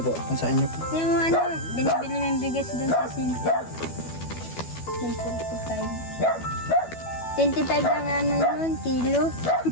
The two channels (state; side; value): late; right; 12 ms